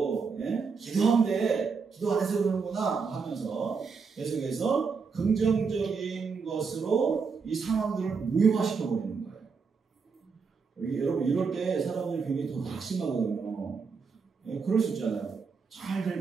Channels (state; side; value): quieter; left; 5.3 dB